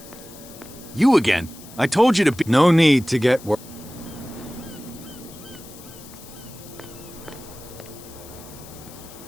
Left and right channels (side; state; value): left; noise; hiss, 19 dB below the sound